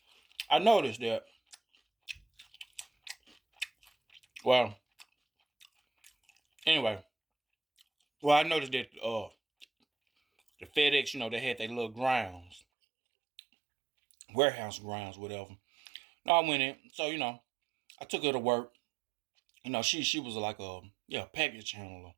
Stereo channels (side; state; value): left; drops out; at 12.6 s